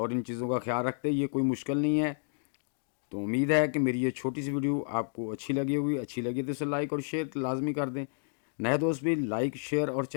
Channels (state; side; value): silent; right; digital silence